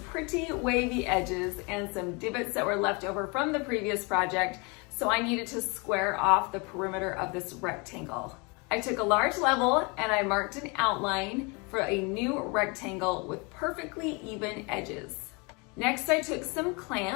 wavy edges and some divots that were left over from the previous project, so I needed to square off the perimeter of this rectangle. I took a large level and I marked an outline for a new rectangle with perfectly even edges. Next, I took some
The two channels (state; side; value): quieter; right; 30.0 dB